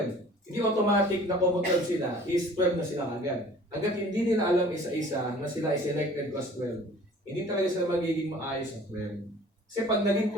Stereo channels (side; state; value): both; normal; correlation 0.49